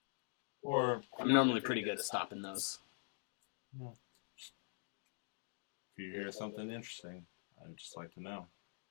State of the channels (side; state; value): right; silent; digital silence